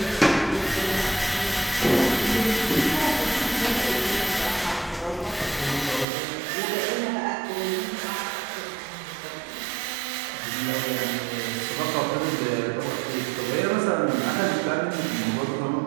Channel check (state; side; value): drops out; left; at 6.1 s